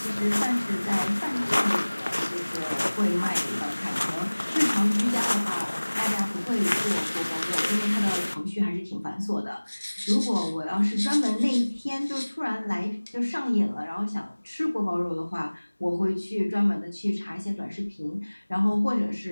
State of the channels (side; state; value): both; inverted; correlation -1.00